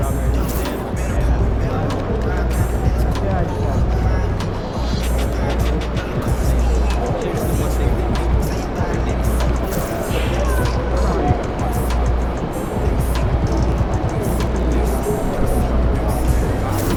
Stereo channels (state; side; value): identical; both; correlation 1.00